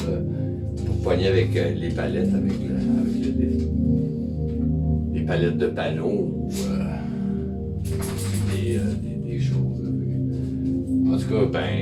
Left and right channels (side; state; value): both; identical; correlation 1.00